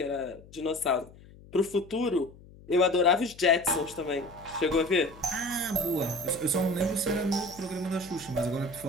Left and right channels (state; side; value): noise; left; hum, 21 dB below the sound